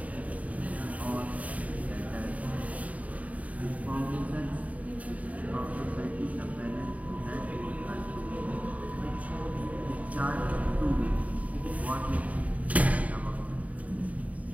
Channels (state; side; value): late; left; 0.070 ms